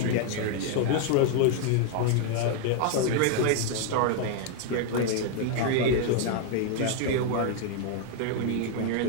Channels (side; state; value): both; different; correlation 0.00